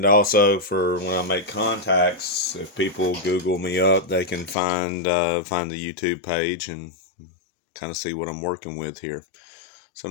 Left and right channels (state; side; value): drops out; right; at 4.5 s